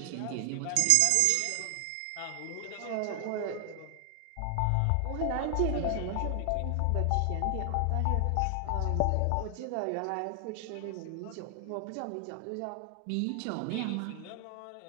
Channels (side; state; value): both; different; correlation 0.00